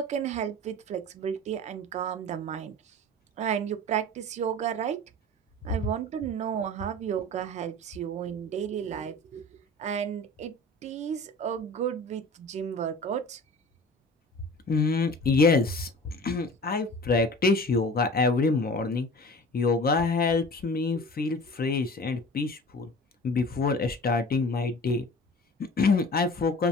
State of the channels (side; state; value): both; normal; correlation 0.40